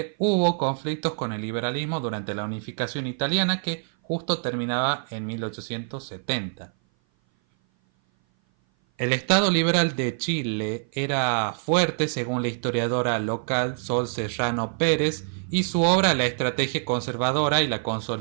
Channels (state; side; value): silent; left; 57 dB below the other